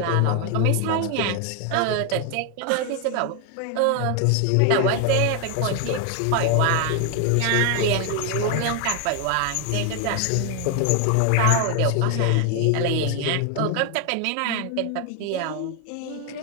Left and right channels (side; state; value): both; different; correlation 0.01